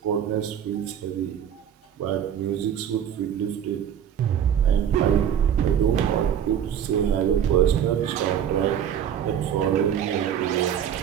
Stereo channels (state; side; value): quieter; left; 9.2 dB